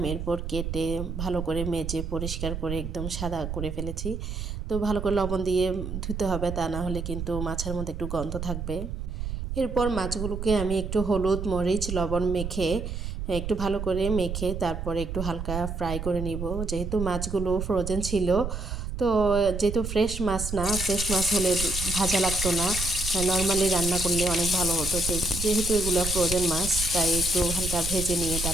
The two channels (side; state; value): right; noise; rumble, 5 dB below the sound